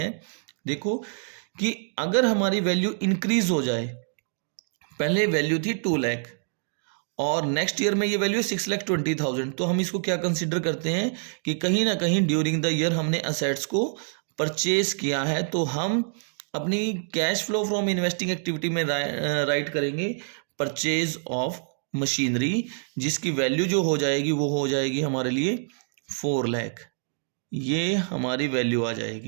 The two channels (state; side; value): silent; left; digital silence